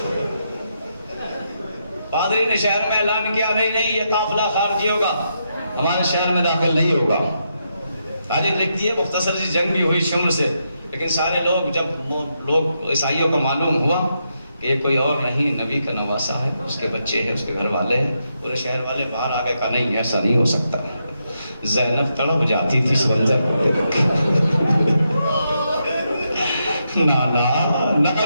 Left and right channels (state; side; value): inverted; both; correlation -0.82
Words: پادری نے شہر میں اعلان کیا، نہیں یہ قافلہ خارجی ہوگا، ہمارے شہر میں داخل نہیں ہوگا۔ تاریخ لکھتی ہے مختصر سی جنگ بھی ہوئی شمر سے، لیکن سارے لوگ جب عیسائیوں کو معلوم ہوا کہ یہ کوئی اور نہیں نبی کا نواسا ہے، اس کے بچے ہیں، اس کے گھر والے ہیں، پورے شہر والے باہر آ گئے، کہا نہیں ایسا نہیں ہو سکتا۔ زینب تڑپ جاتی تھی اس منظر کو دیکھ کے۔ نانا